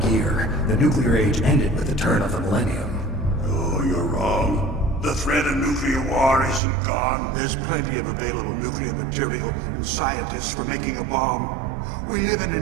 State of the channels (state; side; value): drops out; left; at 6.6 s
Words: The nuclear age ended with the turn of the millennium. Oh, you're wrong. The threat of nuclear war isn't gone. There's plenty of available nuclear material and scientists for making a bomb. We live in